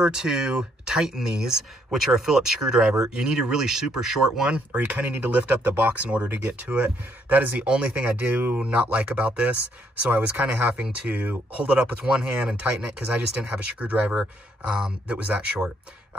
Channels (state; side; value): normal; both; correlation 0.71